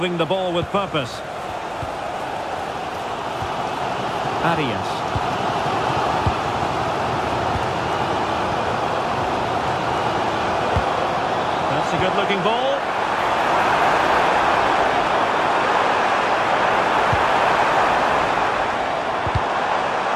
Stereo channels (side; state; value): both; identical; correlation 1.00